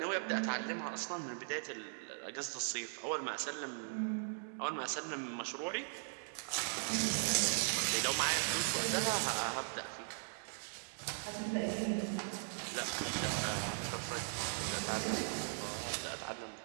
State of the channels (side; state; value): left; silent; digital silence